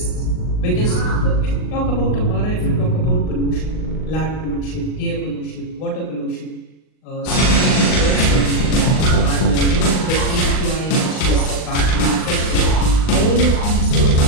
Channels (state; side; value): late; right; 39 ms